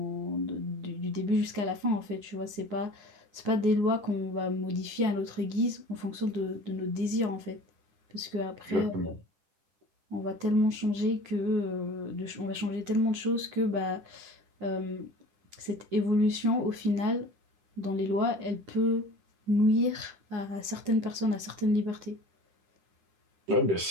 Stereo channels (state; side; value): late; left; 9.7 ms